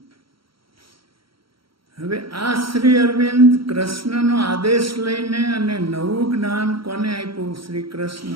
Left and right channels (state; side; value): late; left; 0.74 ms